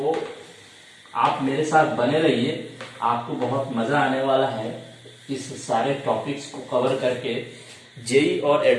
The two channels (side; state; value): both; identical; correlation 1.00